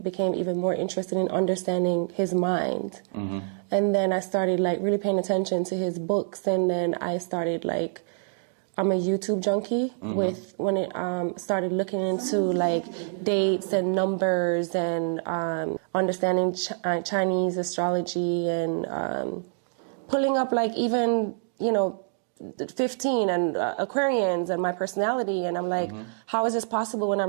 became even more interested in understanding his mind. And then I started, like, really paying attention to his books. And then I started, like, I'm a YouTube junkie when it started looking into, like, dates and numbers and understanding Chinese astrology and pulling up, like, even, you know, 15 and Aquarians and my personality, and I'm like, how is this possible when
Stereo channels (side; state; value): left; silent; digital silence